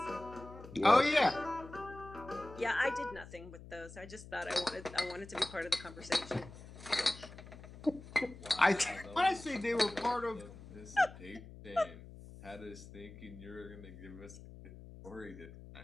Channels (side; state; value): left; noise; hum, 16 dB below the sound